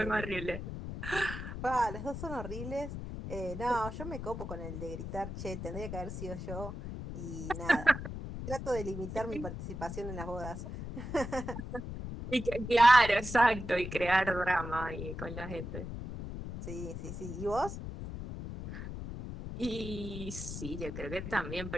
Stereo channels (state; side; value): noise; left; rumble, 7 dB below the sound